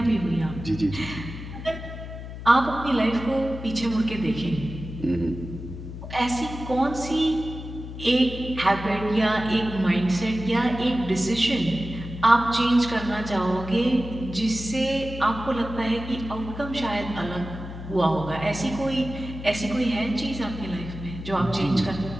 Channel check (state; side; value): noise; left; hum, 10 dB below the sound